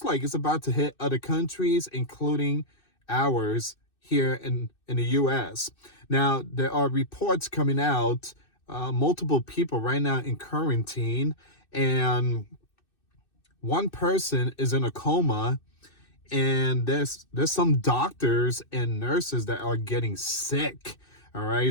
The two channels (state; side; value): late; right; 2.6 ms